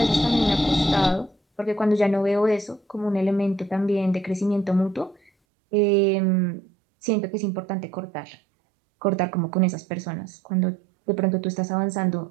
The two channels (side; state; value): left; drops out; at 5.3 s